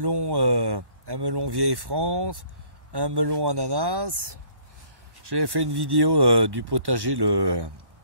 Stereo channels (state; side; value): late; left; 1.1 ms